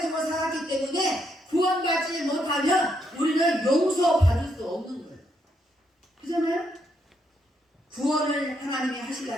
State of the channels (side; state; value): both; normal; correlation 0.77